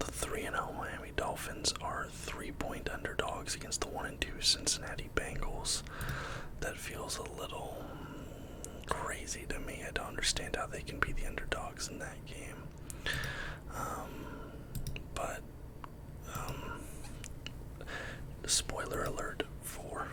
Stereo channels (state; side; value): identical; both; correlation 1.00